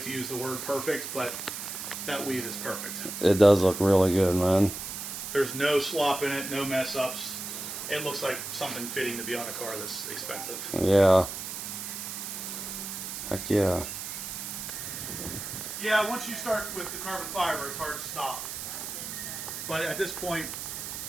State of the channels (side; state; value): right; noise; hiss, 6 dB below the sound